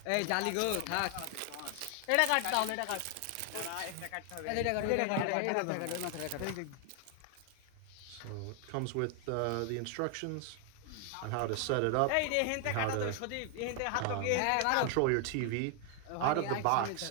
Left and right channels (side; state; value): both; different; correlation 0.00